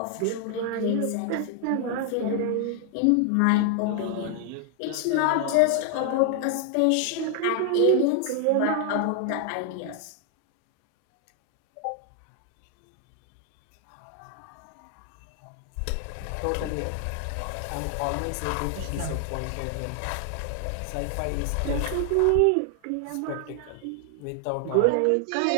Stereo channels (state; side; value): different; both; correlation 0.00